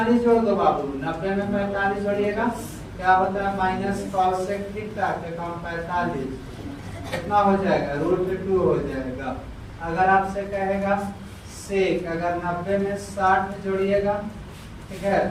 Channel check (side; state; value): both; identical; correlation 1.00